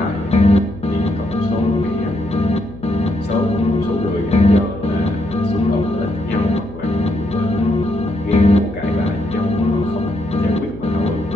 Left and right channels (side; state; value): left; noise; hum, 16 dB below the sound